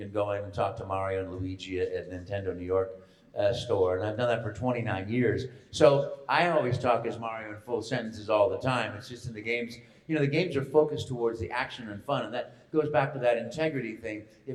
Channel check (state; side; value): identical; both; correlation 1.00